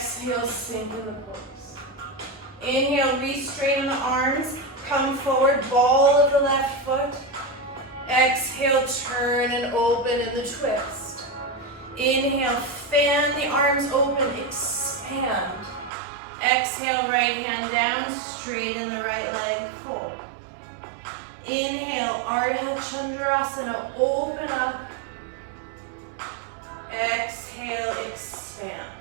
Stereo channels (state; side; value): drops out; left; at 15.9 s